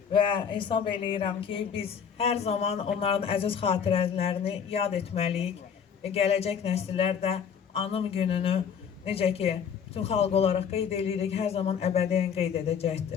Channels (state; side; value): quieter; right; 7.4 dB